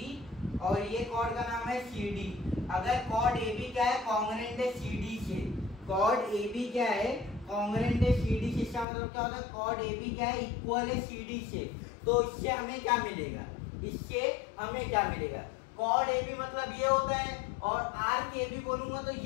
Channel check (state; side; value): drops out; right; at 8.8 s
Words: और ये कॉर्ड का नाम है CD। अगर कॉर्ड AB क्या है कॉन्ग्रुएंट है CD से, कॉर्ड AB क्या है कॉन्ग्रुएंट है CD से, इसका मतलब क्या होता है कॉर्ड AB क्या है इक्वल है CD से। तो इससे हमें क्या मिलेगा, इससे हमें क्या मिलेगा, कॉर्ड AB मतलब ये होता है और आर्क AB बोलूंगा तो